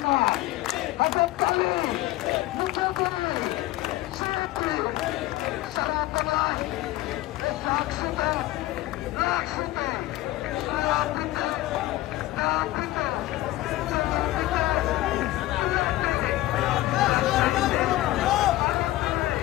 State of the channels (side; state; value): right; quieter; 16.8 dB